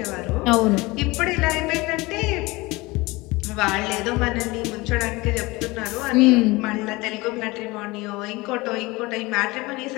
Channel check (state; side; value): quieter; right; 22.5 dB